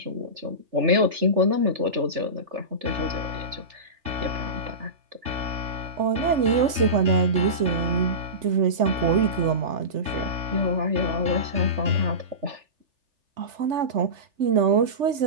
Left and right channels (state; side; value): late; left; 3.4 ms